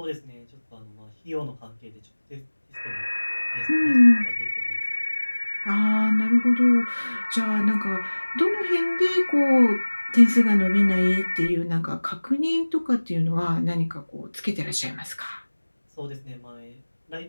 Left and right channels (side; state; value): both; inverted; correlation -1.00